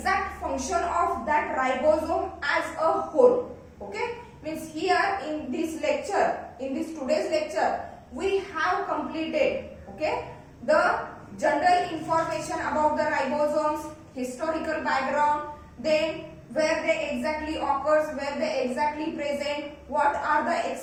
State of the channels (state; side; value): identical; both; correlation 1.00